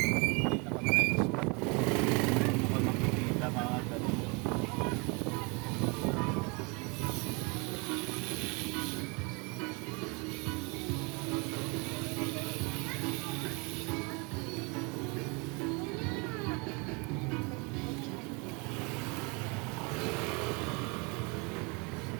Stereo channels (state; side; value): quieter; left; 30.7 dB